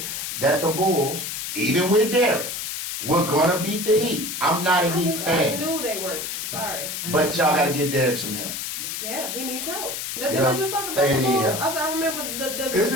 that the Bulls, even with Derek, were gonna beat the Heat. I'm not a Heat I fan. knew they weren't. Sorry. But y'all gotta get Derek some help. Yeah, he needs help. Didn't Yeah. I just talk about They the need Bulls? help. I remember Is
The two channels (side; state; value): left; noise; hiss, 5 dB below the sound